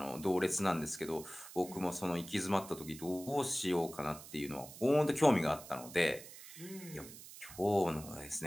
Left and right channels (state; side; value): noise; right; hiss, 15 dB below the sound